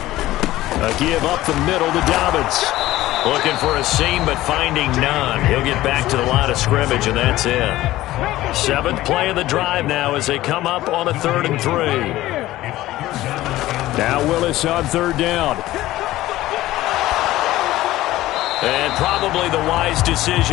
A give up the middle to Dobbins. Looking for a seam, but finding none. He'll get back to the line of scrimmage, and that's it. 7th play of the drive now as they come up on a 3rd and 3. Now Willis on 3rd down. And probably the wise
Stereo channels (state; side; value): quieter; right; 16.1 dB